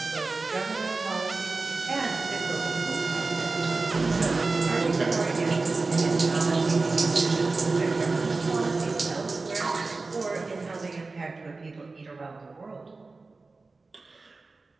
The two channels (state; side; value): quieter; left; 3.7 dB